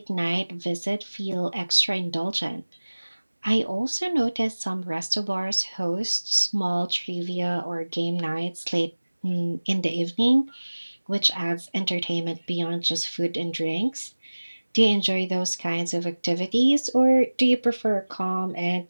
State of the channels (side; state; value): both; inverted; correlation -1.00